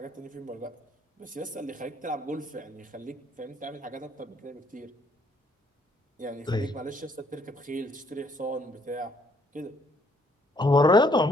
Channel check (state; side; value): normal; both; correlation 0.67